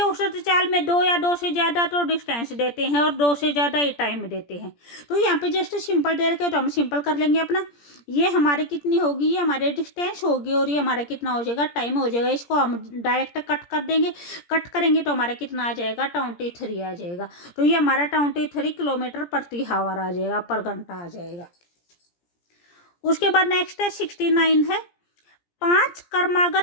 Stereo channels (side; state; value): right; late; 17 ms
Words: औसत चाल में 2 या 2 से ज़्यादा तो डिस्टेंस देते हैं और 2 से ज़्यादा ही टाइम देते हैं। तो यहाँ पे जस्ट सिंपल दे रखे हो तो हम सिंपल कर लेंगे अपना। ये हमारे कितनी होगी, ये हमारे डिस्टेंस होगी और ये हमारा कितना हो जाएगा टाइम हो जाएगा। इसको हम डायरेक्ट कट कर देंगे, कट करेंगे तो हमारा कितना आ जाएगा 23 आ जाएगा। तो ये हमारा 23 किलोमीटर प्रति हावर आ जाएगा, पर घंटा आ जाएगा। उसके बाद नेक्स्ट है 69 है। 5